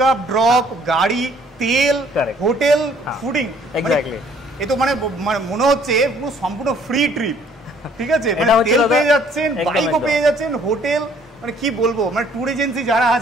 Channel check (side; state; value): both; normal; correlation 0.60